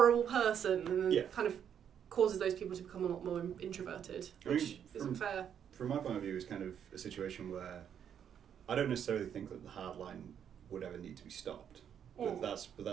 person, and it kind of causes those people to become a lot more introverted, which isn't fair. From my point of view, it's kind of a situation where I don't necessarily think that the hard line would ever need to be stopped, but that's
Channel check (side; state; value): left; quieter; 8.7 dB